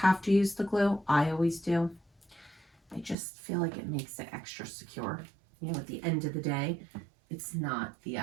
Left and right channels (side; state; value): left; drops out; at 3.2 s